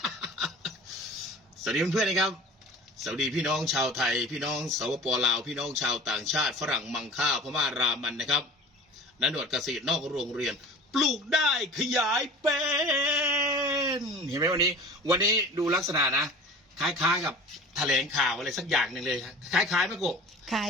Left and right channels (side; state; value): both; normal; correlation 0.40